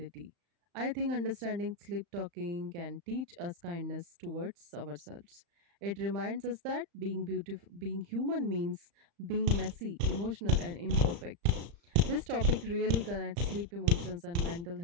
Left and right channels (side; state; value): left; late; 35 ms